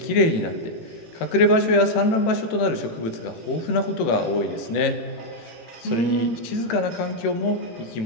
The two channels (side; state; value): right; late; 18 ms